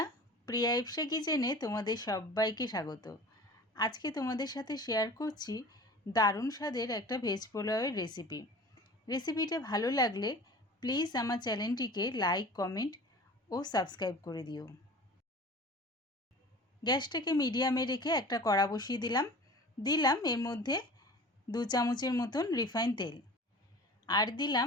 প্রিয়া ইপসা কিচেনে তোমাদের সবাইকে স্বাগত। আজকে তোমাদের সাথে শেয়ার করছি দারুণ স্বাদের একটা ভেজ পোলাওয়ের রেসিপিটা ভালো লাগলে প্লিজ আমার চ্যানেলটিকে লাইক, কমেন্ট ও সাবস্ক্রাইব করে দিও। গ্যাসটাকে মিডিয়ামে রেখে একটা কড়া বসিয়ে দিলাম এর মধ্যে 2 চামচের মতন রিফাইন তেল, আর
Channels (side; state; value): both; normal; correlation 0.40